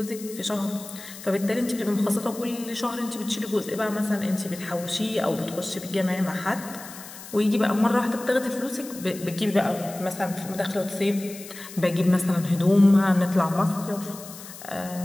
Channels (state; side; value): noise; left; hiss, 15 dB below the sound